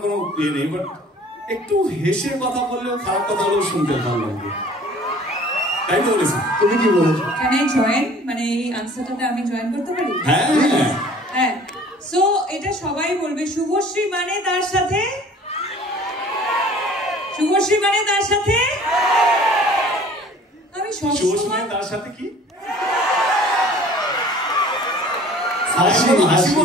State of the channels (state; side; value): normal; both; correlation 0.49